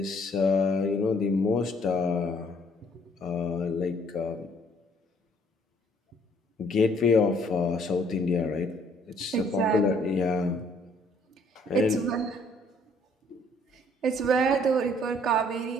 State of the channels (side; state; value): both; normal; correlation 0.62